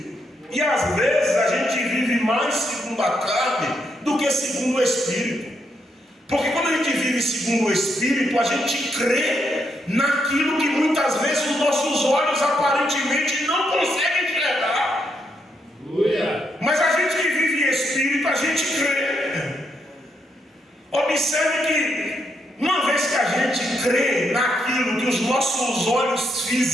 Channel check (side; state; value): both; normal; correlation 0.79